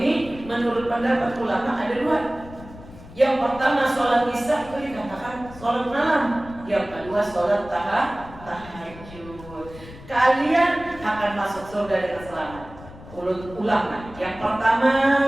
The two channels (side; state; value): left; noise; rumble, 17 dB below the sound